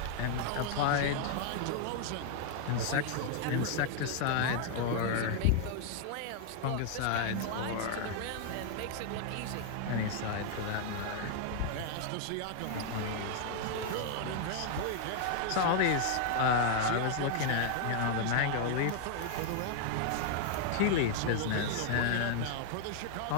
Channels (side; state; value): both; different; correlation 0.00